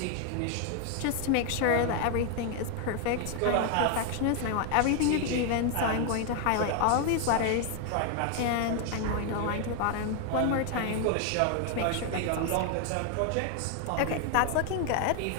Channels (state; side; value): different; both; correlation 0.01